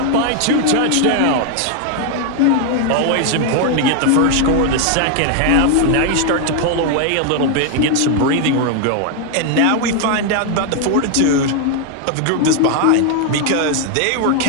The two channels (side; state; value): both; different; correlation 0.00